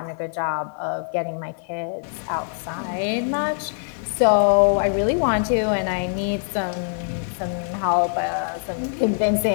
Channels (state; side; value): silent; right; digital silence